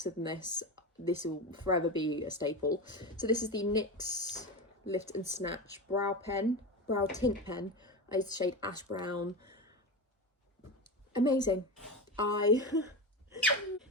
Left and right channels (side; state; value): both; normal; correlation 0.21